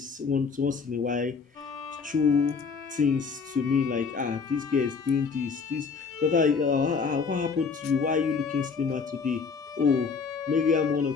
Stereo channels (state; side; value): quieter; right; 5.3 dB